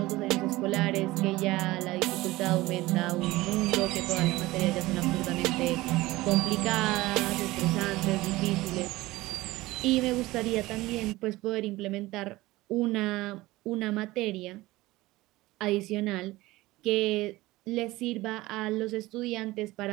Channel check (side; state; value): left; quieter; 18.9 dB